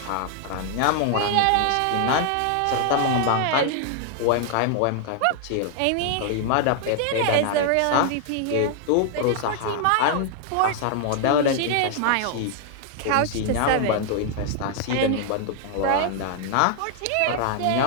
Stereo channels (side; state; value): both; different; correlation 0.00